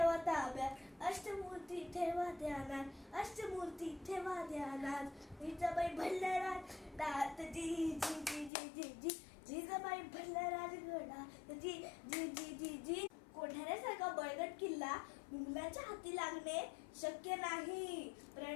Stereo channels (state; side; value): drops out; right; at 8.5 s